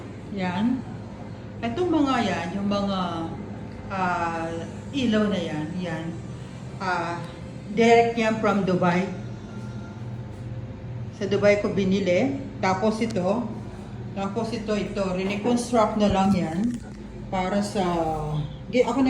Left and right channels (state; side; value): identical; both; correlation 1.00